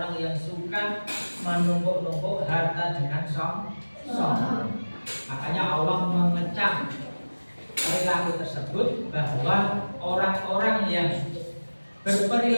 yang suka menumpuk-numpuk harta dengan sombong. Makanya Allah mengecam perilaku tersebut, bahwa orang-orang yang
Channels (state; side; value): inverted; both; correlation -1.00